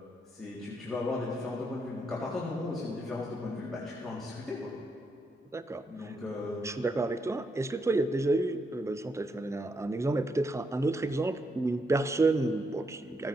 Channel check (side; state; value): both; normal; correlation 0.79